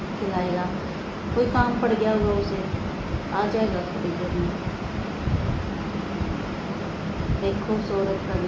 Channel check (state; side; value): identical; both; correlation 1.00